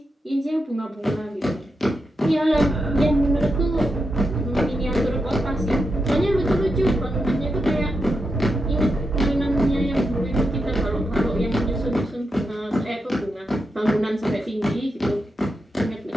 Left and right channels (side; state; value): both; normal; correlation 0.86